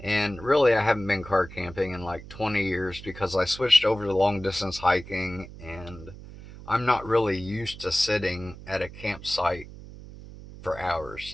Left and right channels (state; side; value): noise; right; hum, 15 dB below the sound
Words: really, I haven't been car camping in like 20 years because I switched over to long distance hiking, and I'm not really used to sitting at a campsite for hours.